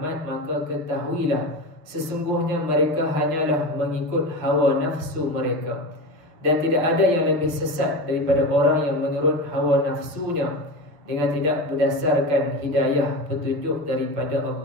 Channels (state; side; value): late; left; 6.8 ms